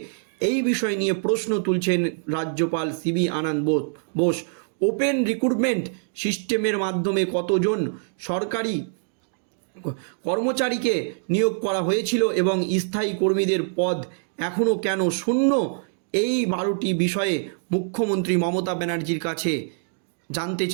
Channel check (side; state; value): left; silent; 62 dB below the other